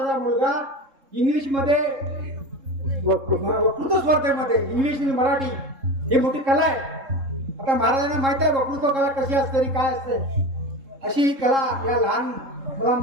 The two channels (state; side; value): late; left; 3.7 ms